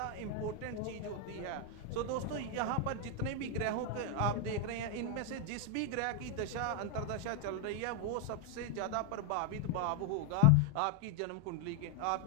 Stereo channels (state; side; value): different; both; correlation 0.00